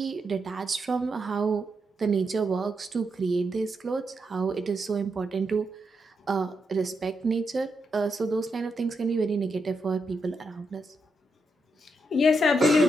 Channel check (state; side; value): normal; both; correlation 0.83